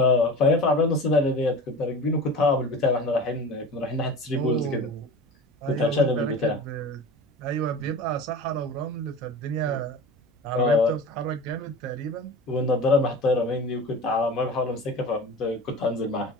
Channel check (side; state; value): both; normal; correlation 0.34